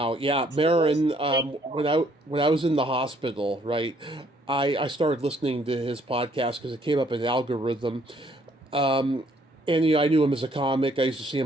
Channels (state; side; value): normal; both; correlation 0.66